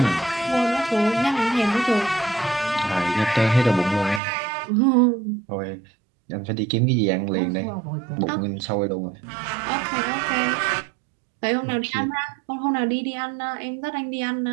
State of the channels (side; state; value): left; drops out; at 4.2 s